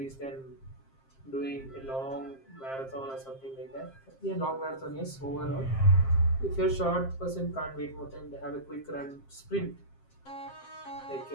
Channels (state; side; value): late; right; 7.5 ms